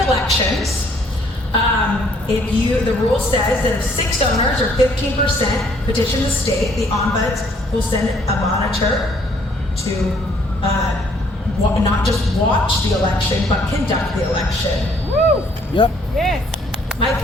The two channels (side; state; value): both; normal; correlation 0.64